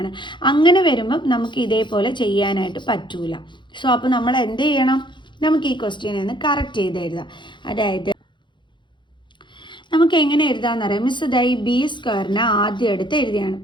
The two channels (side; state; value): right; late; 0.23 ms